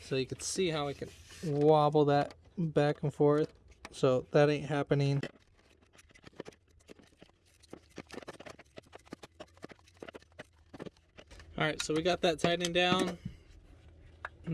so you can see how I can wobble that back and forth. So that ain't happening. All right, so we got that tightened down.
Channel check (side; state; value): both; identical; correlation 1.00